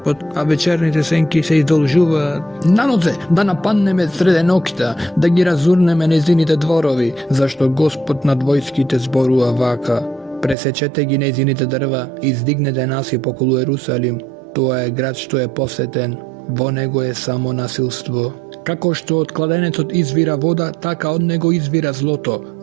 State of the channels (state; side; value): drops out; left; at 10.6 s